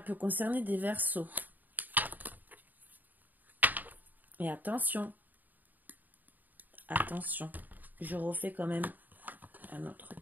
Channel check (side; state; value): left; late; 0.086 ms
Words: concerner des Verseaux. Et attention. Attention. Je refais quand même un autre